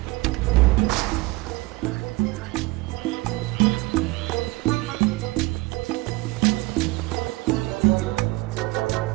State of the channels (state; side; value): quieter; left; 22.1 dB